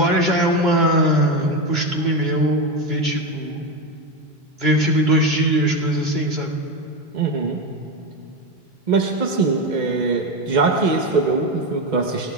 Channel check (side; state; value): both; normal; correlation 0.15